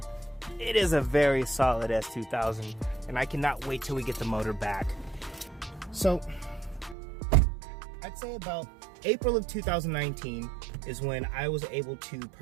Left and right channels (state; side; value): drops out; left; at 7.0 s